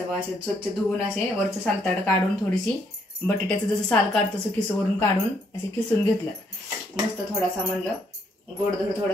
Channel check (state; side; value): normal; both; correlation 0.72